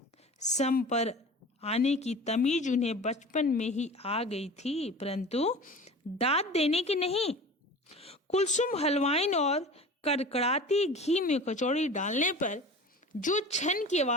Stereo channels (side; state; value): both; normal; correlation 0.38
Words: सम पर आने की तमीज उन्हें बचपन में ही आ गई थी, परंतु दाद देने की नहीं। कुलसुम हलवाइन और कड़कड़ाती घी में कचौड़ी डालने पर जो छन की